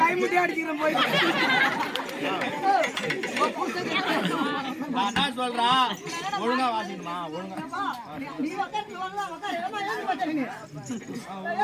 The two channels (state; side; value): identical; both; correlation 1.00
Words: கை முட்டி அடிக்கிறேன் போய் நான் என்ன சொல்றா ஒழுங்கா வாசிக்கணுமா ஒழுங்கா நீ உட்கார்ந்து உட்காரு ஏமா ஏன் பண்றீங்க